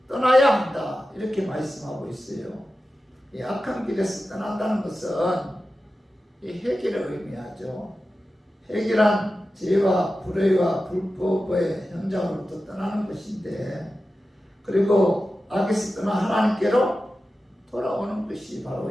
떠나야 한다 이렇게 말씀하고 있어요. 이 악한 길에서 떠난다는 것은 이 회개를 의미하죠. 회개란 죄와 불의와 불법의 현장으로부터 떠나는 것인데 그리고 악에서 떠나 하나님께로 돌아오는 것이 바로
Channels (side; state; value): both; normal; correlation 0.93